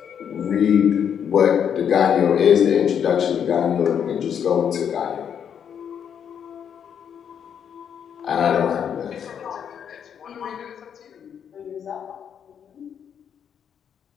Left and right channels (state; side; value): quieter; right; 8.2 dB